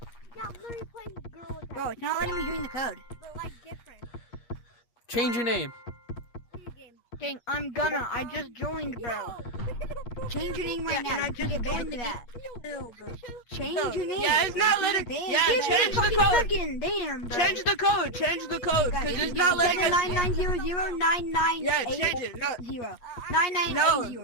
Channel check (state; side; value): late; right; 8.4 ms